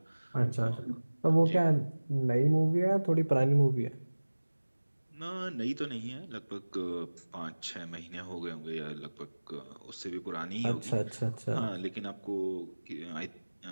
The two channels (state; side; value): inverted; both; correlation -1.00